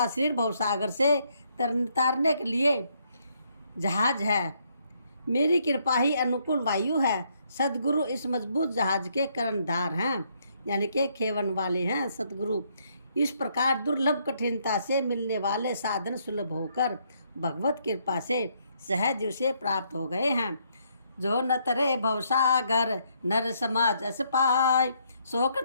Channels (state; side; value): inverted; both; correlation -0.72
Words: शरीर भवसागर से तारने के लिए जहाज है। मेरी कृपा ही अनुकूल वायु है। सदगुरु इस मजबूत जहाज के कर्णधार हैं, यानी कि खेवन वाले हैं सदगुरु। इस प्रकार दुर्लभ कठिनता से मिलने वाले साधन सुलभ होकर भगवत कृपा से सहज उसे प्राप्त हो गए हैं। जो न तरे भवसागर नर समाज अस पाय,